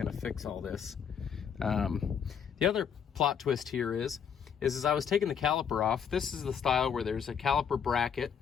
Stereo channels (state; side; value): quieter; right; 7.5 dB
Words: to fix all this. The other plot twist here is as I was taking the caliper off, this is the style where there's a caliper bracket,